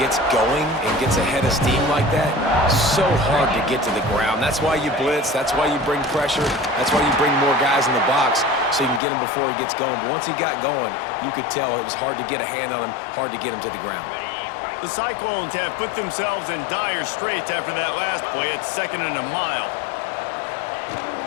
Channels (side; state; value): right; drops out; at 9.0 s